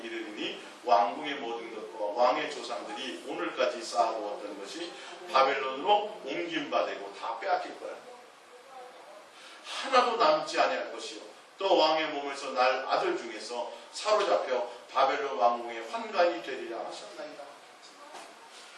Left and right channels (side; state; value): both; identical; correlation 1.00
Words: 왕궁의 모든 것과 왕의 조상들이 오늘까지 쌓아두었던 것이 바벨론으로 옮김받고 다 빼앗길 거라. 하나도 남지 아니할 것이요 또 왕의 몸에서 날 아들 중에서 사로잡혀 바벨론 왕궁의 환관이 되리라 하셨나이다.